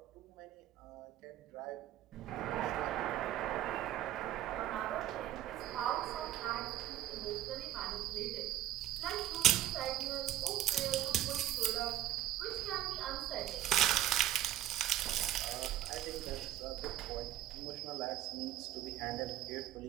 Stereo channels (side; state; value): left; quieter; 12.8 dB